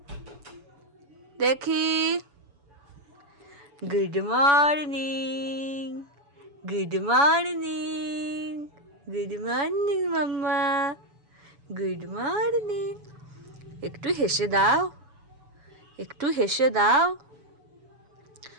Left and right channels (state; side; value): late; left; 7.0 ms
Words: দেখি। Good morning, good morning, good morning মাম্মা, গুড মর্নিং। একটু হেসে দাও, একটু হেসে দাও।